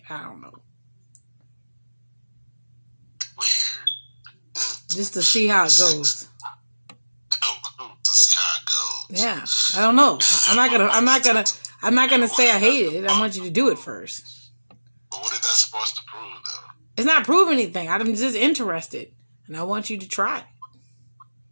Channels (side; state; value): both; inverted; correlation -1.00